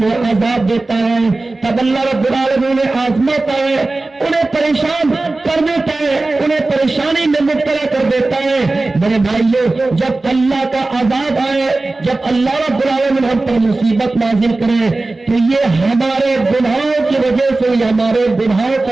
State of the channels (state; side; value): quieter; left; 3.2 dB